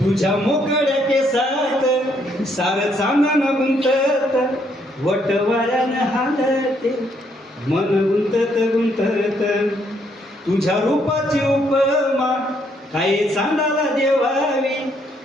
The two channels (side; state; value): both; normal; correlation 0.71